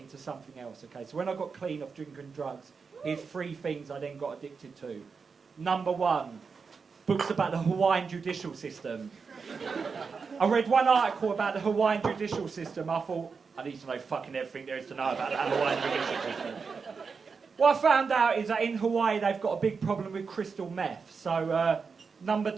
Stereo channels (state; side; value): quieter; left; 5.2 dB